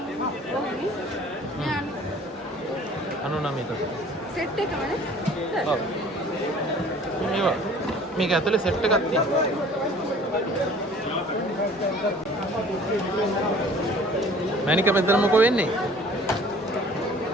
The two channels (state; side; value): normal; both; correlation 0.50